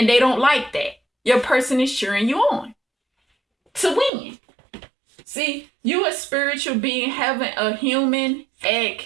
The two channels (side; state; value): left; drops out; at 4.1 s